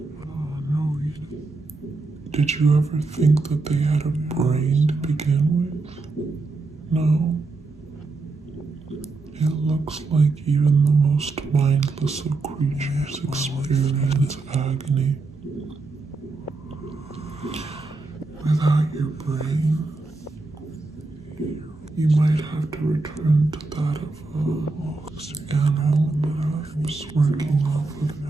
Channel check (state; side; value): quieter; left; 3.6 dB